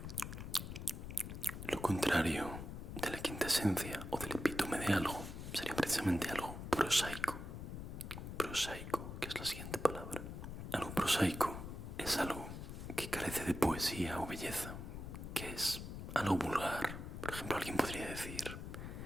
Lo contrario de la quinta esencia o del epítome de algo sería precisamente algo prosaico. Prosaico, que es la siguiente palabra. Algo prosaico es algo que carece de poesía o belleza, que es algo vulgar. Por ejemplo, alguien podría decir,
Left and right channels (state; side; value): noise; left; rumble, 8 dB below the sound